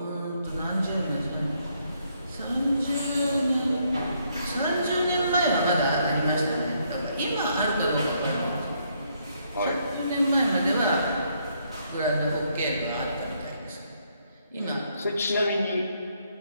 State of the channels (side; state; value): both; inverted; correlation -0.72